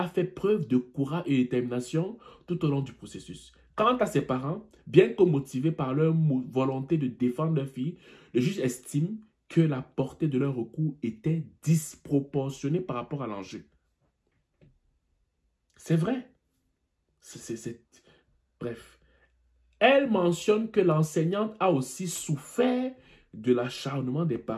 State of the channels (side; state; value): both; identical; correlation 1.00